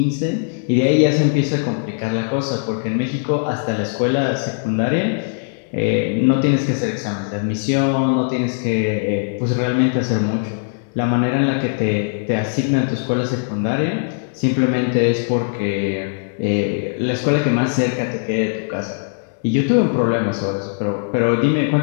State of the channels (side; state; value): right; silent; digital silence